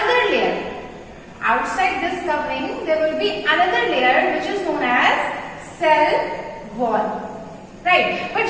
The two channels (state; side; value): identical; both; correlation 1.00